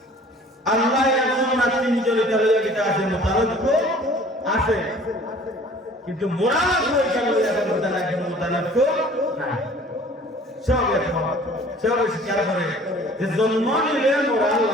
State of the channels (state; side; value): normal; both; correlation 0.50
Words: আল্লাহ এমন না তিনজনের তালিকা আছে মোতালব্য আছে কিন্তু মোরা হয়ে গেল এখন মোতালব্য নাই সব সব স্বীকার করে যে জন্ম নিলে মোরা